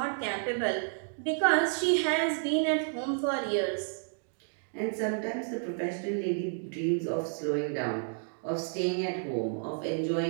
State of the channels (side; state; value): left; silent; digital silence